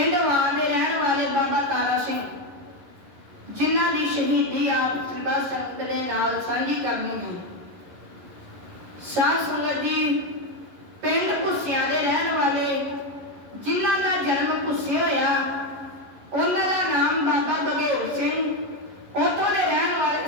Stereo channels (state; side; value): late; left; 11 ms